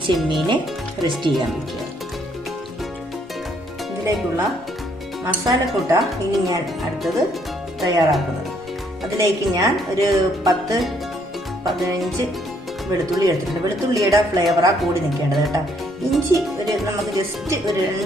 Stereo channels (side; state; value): both; normal; correlation 0.68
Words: ചെമ്മീനെ റെസ്റ്റ് ചെയ്യാൻ വയ്ക്കുക. ഇതിലേക്കുള്ള മസാലക്കൂട്ട ഇനി ഞാൻ അടുത്തത് തയ്യാറാക്കുന്നത്. അതിലേക്ക് ഞാൻ ഒരു 10-15 വെളുത്തുള്ളി എടുത്തിട്ടുണ്ട്. വെളുത്തുള്ളിയുടെ ഫ്ലേവറാ കൂടി നിൽക്കേണ്ടത് കേട്ടോ. ഇഞ്ചി നമുക്ക് ജസ്റ്റ് ഒരു